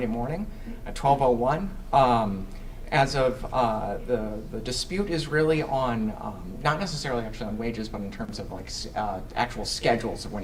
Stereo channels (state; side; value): identical; both; correlation 1.00